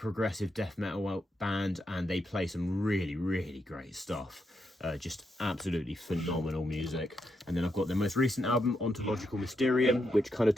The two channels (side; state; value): both; normal; correlation 0.82